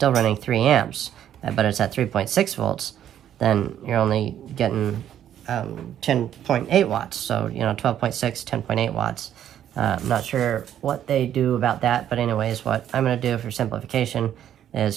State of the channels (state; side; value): quieter; left; 10.5 dB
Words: running 3 amps, but it's at 3.6 volts, then you're only getting 10.8 watts. So 12.6, 10.8 watts. I'm not sure what they do about that, but anyways, what I'm going to do for simplification